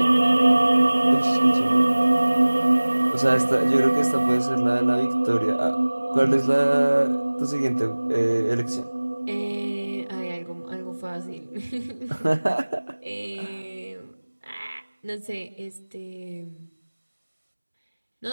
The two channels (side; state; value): both; inverted; correlation -1.00